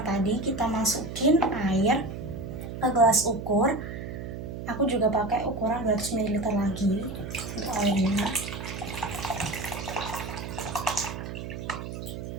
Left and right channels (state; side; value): noise; right; hum, 8 dB below the sound